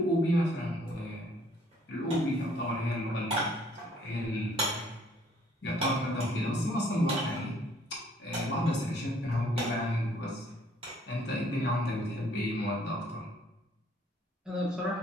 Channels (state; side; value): normal; both; correlation 0.62